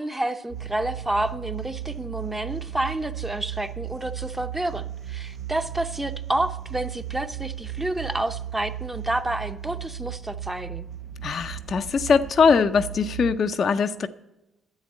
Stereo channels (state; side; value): normal; both; correlation 0.75